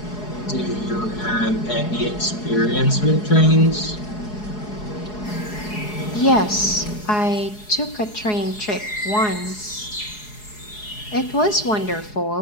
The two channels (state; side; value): late; right; 4.8 ms